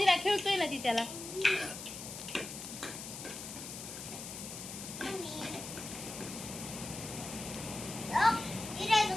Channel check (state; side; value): noise; left; hiss, 9 dB below the sound